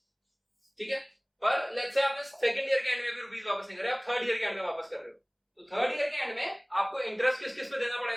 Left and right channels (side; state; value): both; identical; correlation 1.00